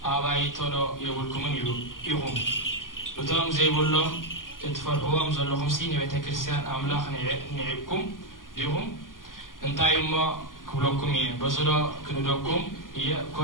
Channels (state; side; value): late; right; 0.90 ms